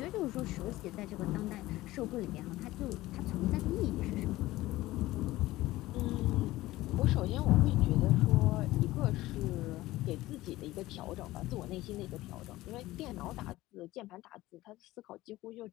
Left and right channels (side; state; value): right; quieter; 17.4 dB